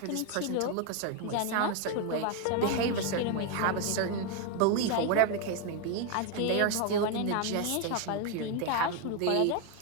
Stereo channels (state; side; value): different; both; correlation 0.01